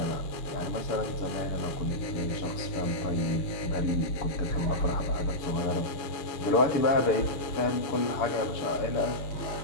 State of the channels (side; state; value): right; late; 6.9 ms